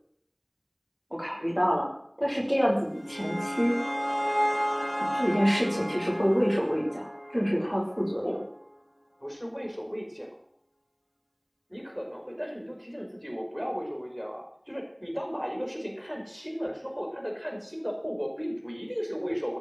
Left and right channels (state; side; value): identical; both; correlation 1.00